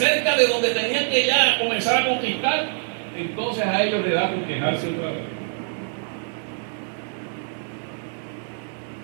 de donde tenían que ya comenzar a conquistar, entonces a ellos le da por quejarse otra vez.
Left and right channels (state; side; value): silent; left; digital silence